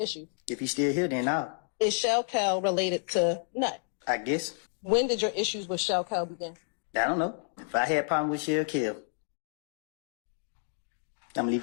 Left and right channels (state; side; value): silent; right; digital silence